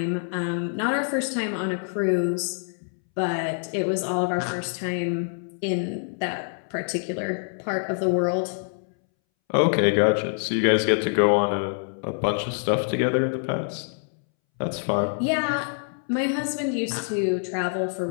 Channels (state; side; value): silent; right; 61 dB below the other